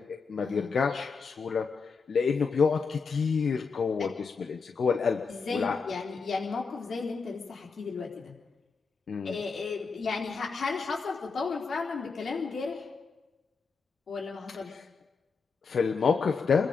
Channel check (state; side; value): quieter; right; 5.0 dB